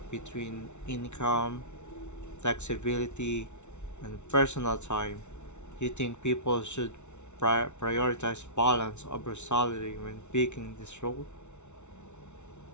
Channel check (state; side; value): late; right; 0.82 ms